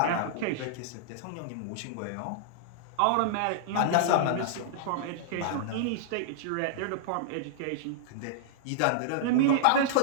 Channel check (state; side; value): different; both; correlation -0.01